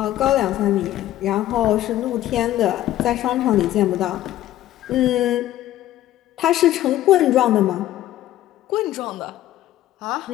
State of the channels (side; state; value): right; quieter; 13.7 dB